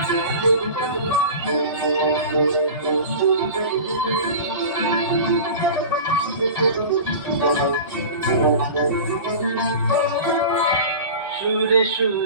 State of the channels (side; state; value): both; inverted; correlation -0.34